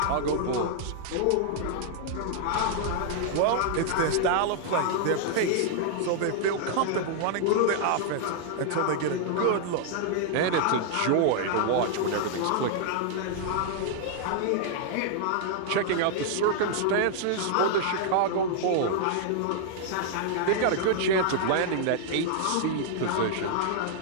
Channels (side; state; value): both; different; correlation -0.01